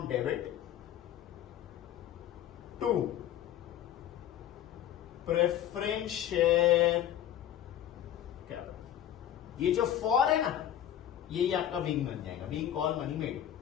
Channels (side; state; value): right; quieter; 11.1 dB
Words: debit to preference share capital. ये जो फॉर है ना, यही आपका विंग बन जाएगा, विंग कॉल मनी मेड,